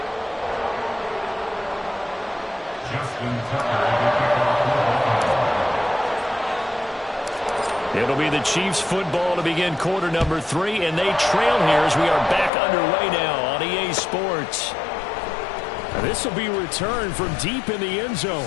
It'll be the Chiefs football to begin quarter number 3, and they trail here as we are back underway now on EA Sports. This will be returned from deep in the end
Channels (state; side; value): drops out; right; at 12.5 s